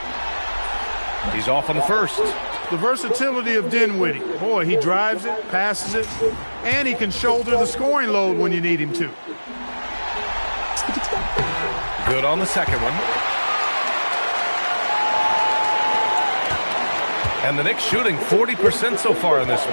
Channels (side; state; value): both; inverted; correlation -1.00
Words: He's off on the first. The versatility of Dinwiddie. Boy, he drives it, passes it, and he can shoulder the scoring load when you need him to. Good on the second one. And the Knicks shooting 40% so far in this